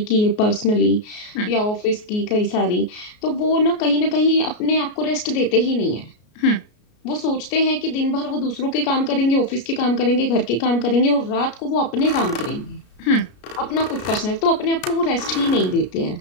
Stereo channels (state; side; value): late; right; 33 ms